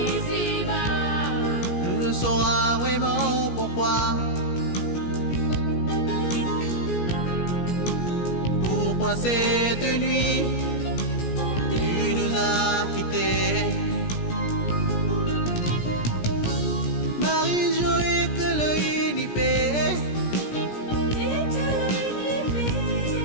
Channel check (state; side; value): late; right; 17 ms